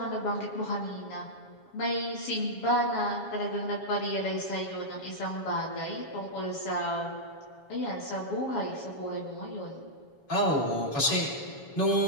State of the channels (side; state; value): right; late; 7.2 ms